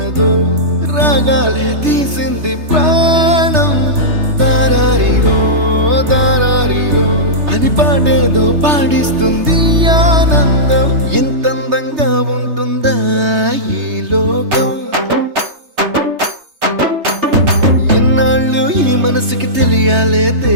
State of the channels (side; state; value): left; late; 3.3 ms